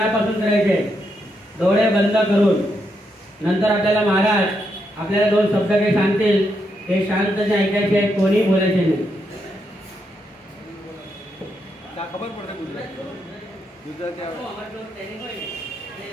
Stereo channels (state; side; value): normal; both; correlation 0.80